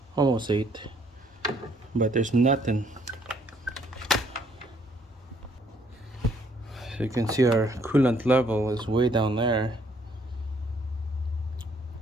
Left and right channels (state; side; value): normal; both; correlation 0.66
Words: 8. But there's nothing. So you can see our coolant level is way down there.